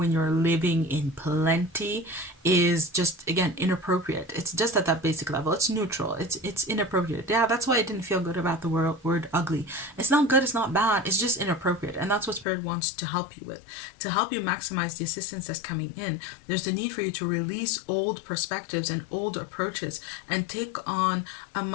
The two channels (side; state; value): right; drops out; at 12.5 s